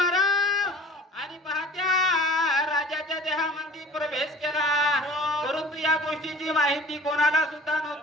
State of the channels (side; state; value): both; normal; correlation 0.46